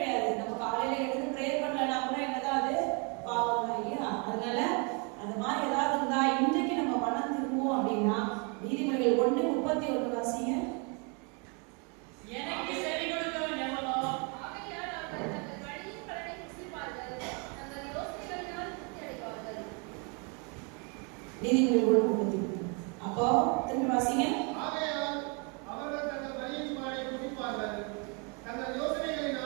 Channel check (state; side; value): quieter; left; 34.3 dB